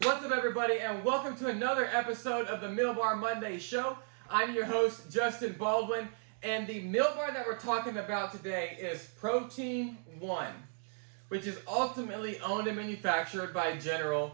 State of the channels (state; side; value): silent; left; 55 dB below the other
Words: What's up, everybody, and welcome to another episode of the Meal Bar Monday Show. I'm your host, Justin Baldwin, and the meal bar that we're talking about today is Protein One, which is ultimately owned and manufactured by